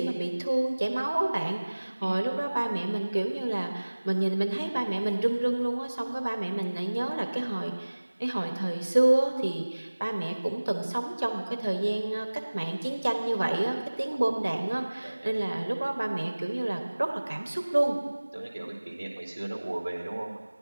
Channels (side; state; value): both; inverted; correlation -1.00